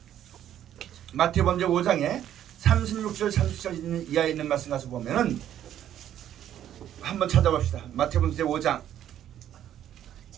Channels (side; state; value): left; quieter; 11.0 dB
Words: 마태복음 5장에 36절 37절 이하에 있는 말씀 가서 보면은 한번 찾아봅시다. 마태복음 5장